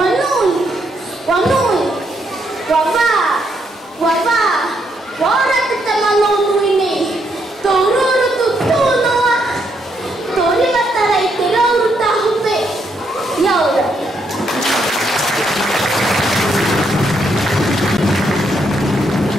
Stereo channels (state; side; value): normal; both; correlation 0.76